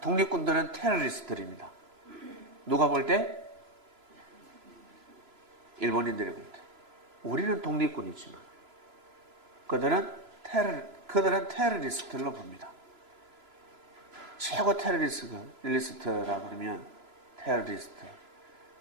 독립군들은 테러리스트들입니다. 누가 볼 때? 일본인들이 볼 때. 우리는 독립군이지만 그들은 테러리스트로 봅니다. 최고 테러리스트라 그러면 테러리스트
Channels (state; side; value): late; left; 3.0 ms